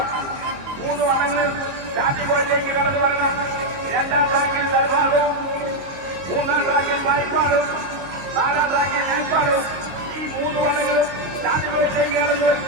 മൂന്ന് വള്ളങ്ങളിൽ സ്റ്റാർട്ടിംഗ് പോയിന്റിലേക്ക് കടന്നു വരണം. രണ്ടാം ട്രാക്കിൽ നടുഭാഗവും മൂന്നാം ട്രാക്കിൽ വായ്പാടും നാലാം ട്രാക്കിൽ മേൽപ്പാടും ഈ മൂന്ന് വള്ളങ്ങളും സ്റ്റാർട്ടിംഗ് പോയിന്റിലേക്ക് കടന്നു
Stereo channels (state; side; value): late; left; 22 ms